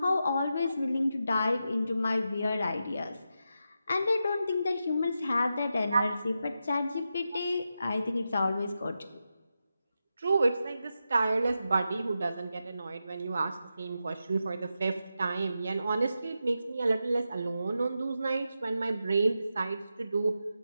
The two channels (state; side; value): inverted; both; correlation -0.88